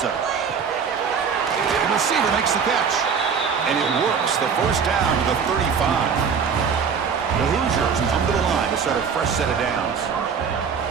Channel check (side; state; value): left; quieter; 6.3 dB